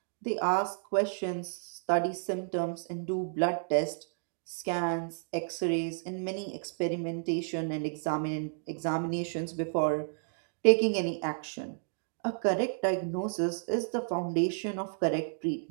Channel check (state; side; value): silent; left; digital silence